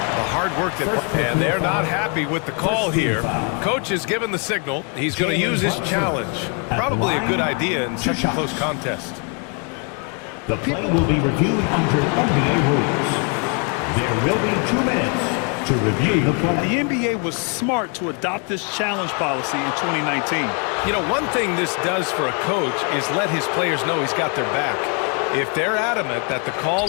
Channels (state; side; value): quieter; right; 37.8 dB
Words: hard work and they're not happy with the call here. Coach has given the signal. He's going to use his challenge. Probably a good idea in such a close contest. The play will be reviewed under NBA rules. There will be 2 minutes to review the play. The NBA was smart to adopt this challenge policy in 2019. You know, one thing this does for a coach is let his players know he's got their back. If they're adamant that the